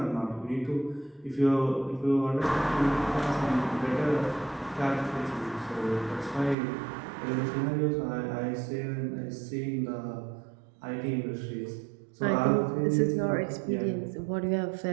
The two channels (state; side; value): drops out; left; at 6.6 s